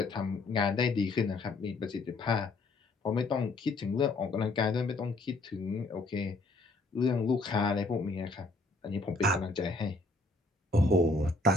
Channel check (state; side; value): quieter; right; 3.1 dB